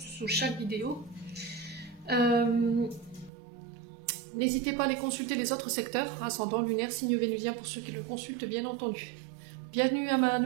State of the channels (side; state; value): left; drops out; at 3.3 s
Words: chaque vidéo. N'hésitez pas à aller consulter les autres secteurs, ascendant, lunaire, signe vénusien pour ceux qui le consultent bien entendu. Bienvenue à ma